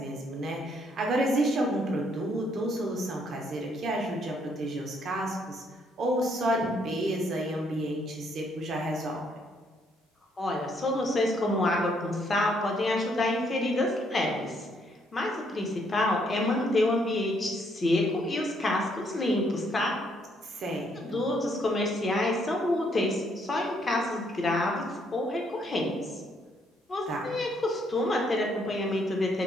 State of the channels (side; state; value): both; normal; correlation 0.70